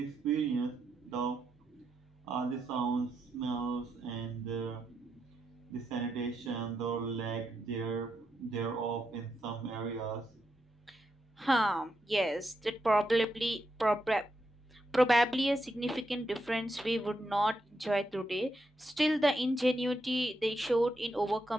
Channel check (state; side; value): normal; both; correlation 0.83